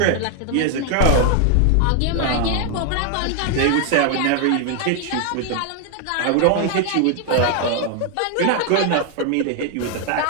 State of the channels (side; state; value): both; different; correlation 0.00